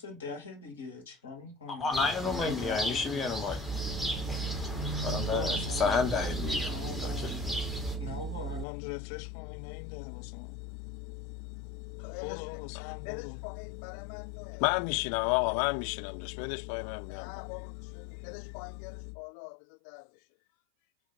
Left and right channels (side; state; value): right; drops out; at 8.7 s